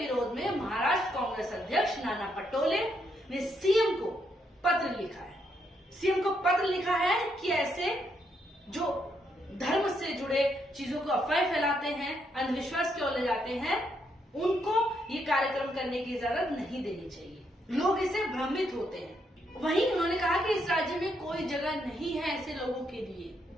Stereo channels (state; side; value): normal; both; correlation 0.77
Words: में महाराष्ट्र कांग्रेस अध्यक्ष नाना पटोले ने सीएम को पत्र लिखा है। सीएम को पत्र लिखा है कि ऐसे जो धर्म से जुड़े चीजों को अफवाह फैलाते हैं, अंधविश्वास की ओर ले जाते हैं, उनको ये कार्यक्रम करने की इजाजत नहीं देनी चाहिए। लोग इससे भ्रमित होते हैं। वहीं उन्होंने कहा कि इस राज्य में कोई जगह नहीं है ऐसे लोगों के लिए।